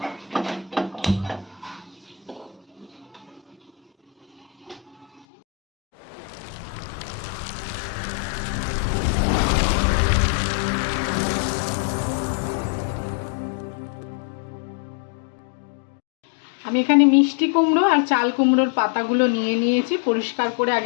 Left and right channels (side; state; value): right; drops out; at 5.2 s